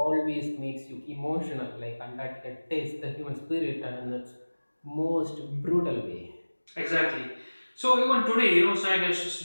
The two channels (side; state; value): both; inverted; correlation -1.00